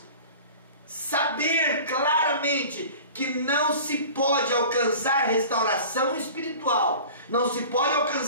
saber claramente que não se pode alcançar restauração espiritual, não se pode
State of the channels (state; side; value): inverted; both; correlation -0.40